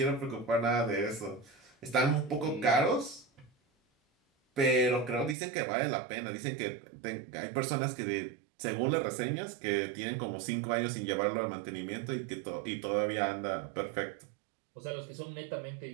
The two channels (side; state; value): left; drops out; at 5.4 s